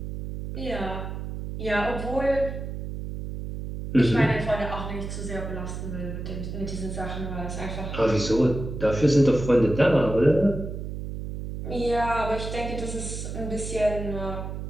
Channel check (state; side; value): noise; right; hum, 6 dB below the sound